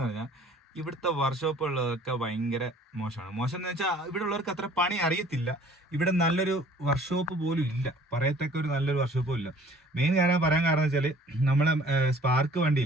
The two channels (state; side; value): normal; both; correlation 0.52